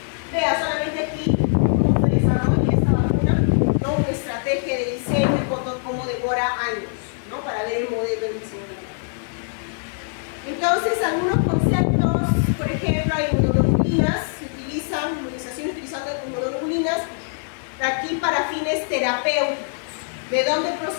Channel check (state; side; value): silent; right; digital silence